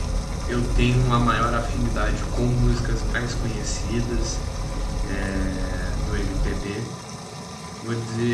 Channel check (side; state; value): both; identical; correlation 1.00